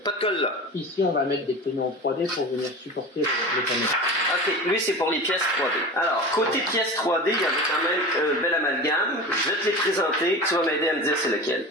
de colle là. Ici, on va mettre des panneaux en 3D pour venir supporter les panneaux. Ok, lui c'est pour les pièces 3D. Alors, côté pièces 3D, il y avait quand même un bel amalgame. Je vais te les présenter, tu vas m'aider à me dire c'est lequel.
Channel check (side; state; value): both; normal; correlation 0.31